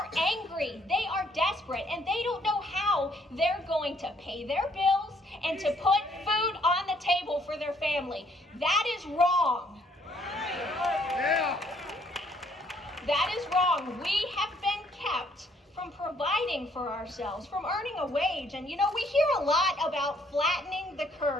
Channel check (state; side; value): normal; both; correlation 0.66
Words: angry. They are desperate. And they don't know how they're going to pay their bills and to put food on the table for their family. That is wrong. Yeah. That is wrong. We have been kept from providing for ourselves, from earning a wage. And, you know, we hear a lot about flattening the